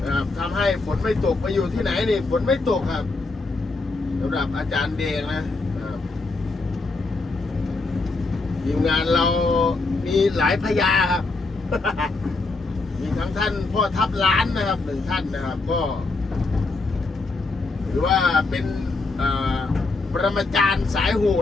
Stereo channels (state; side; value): quieter; right; 3.6 dB